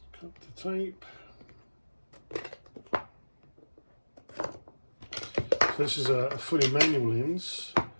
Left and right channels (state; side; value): inverted; both; correlation -1.00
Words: cut the tape. So this is a fully manual lens.